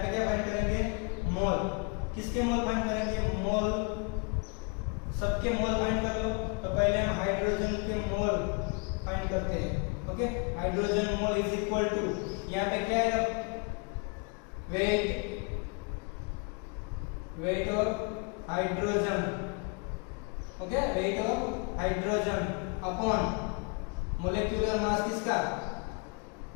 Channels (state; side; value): quieter; right; 33.4 dB